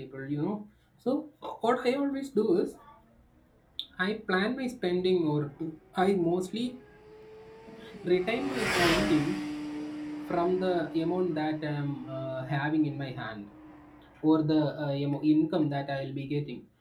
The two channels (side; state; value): both; identical; correlation 1.00